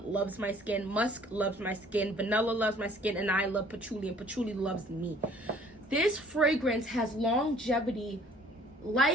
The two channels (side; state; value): both; normal; correlation 0.55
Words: loves my skin. Musk loves my skin. Vanilla loves my skin. And I love patchouli. And patchouli loves me. This fragrance has longevity